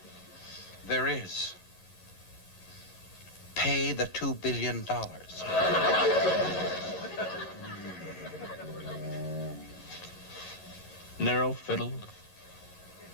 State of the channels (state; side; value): late; right; 11 ms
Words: There is. Pay the $2 billion. Narrow-fiddled.